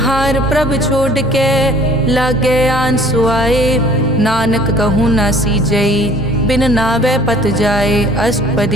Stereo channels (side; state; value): both; normal; correlation 0.52